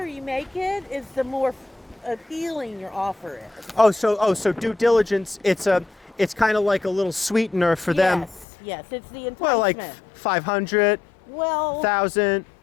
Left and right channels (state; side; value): drops out; right; at 8.5 s